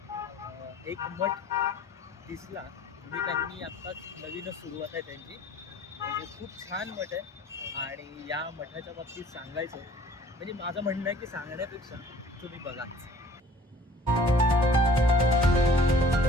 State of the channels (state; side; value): normal; both; correlation 0.52